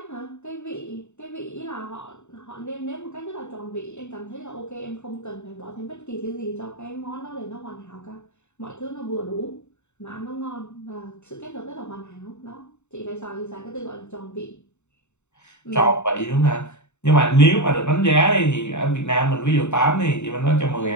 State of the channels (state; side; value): late; right; 0.83 ms